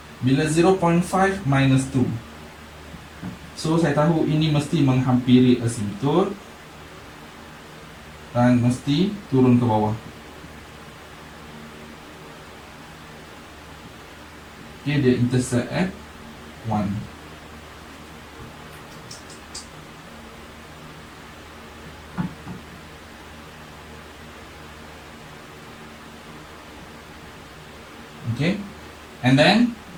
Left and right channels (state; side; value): identical; both; correlation 1.00